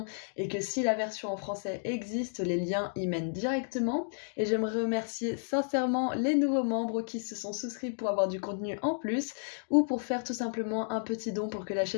et que si la version en français existe, les liens y mènent directement. Et j'aimerais remercier sincèrement les nouveaux membres qui se sont souscrits pour avoir du contenu en plus ou pour faire tout simplement un petit don pour que la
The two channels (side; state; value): right; silent; digital silence